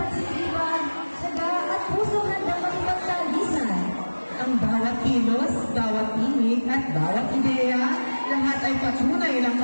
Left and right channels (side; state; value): both; inverted; correlation -1.00